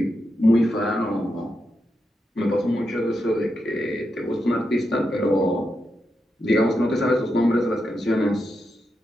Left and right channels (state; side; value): normal; both; correlation 0.85